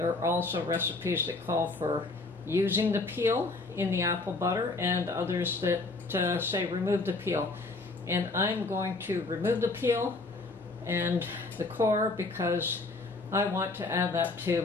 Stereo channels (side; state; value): right; quieter; 3.4 dB